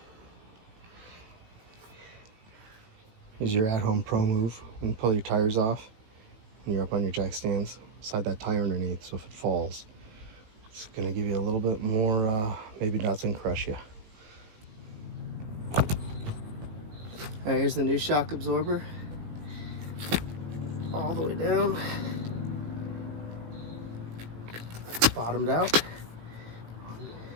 Here's your at-home pro move. When you pull your tires off, when you're up on your jack stands, slide that tire underneath so if it falls, it's gonna give you a little bit more, maybe doesn't crush you. All right, here's the new shock absorber. All the way down. It's bottomed out. 1,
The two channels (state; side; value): late; left; 18 ms